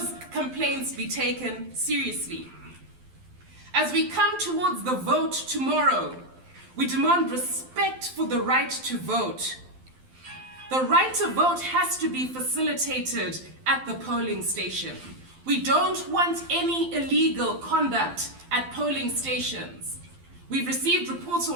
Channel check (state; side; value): late; left; 12 ms